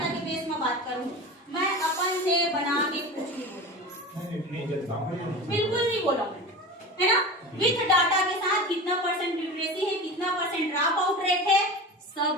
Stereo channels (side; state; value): both; normal; correlation 0.30